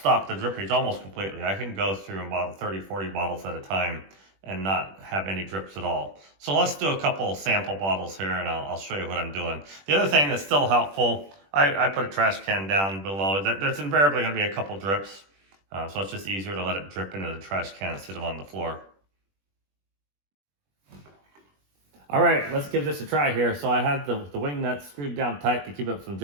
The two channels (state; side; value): late; left; 21 ms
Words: the drippage almost completely. I can go through about 30, 40 bottles at a time and not have any drips at all. So let's do a couple sample bottles here and I'll show you what I'm doing. The other thing that's still helpful, I put a trash can down below. There's invariably going to be a couple drips. So it's just easier to let it drip into the trash can instead of on the floor. All right, let's give this a try here. So I had the wing nut screwed down tight to keep it from